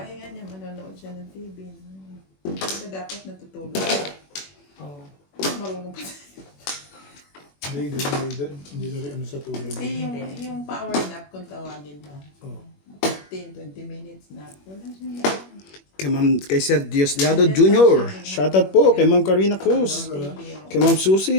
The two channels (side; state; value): right; late; 21 ms